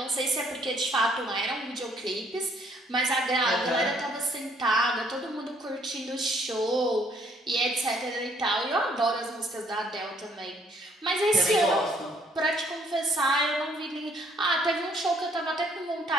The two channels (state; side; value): normal; both; correlation 0.64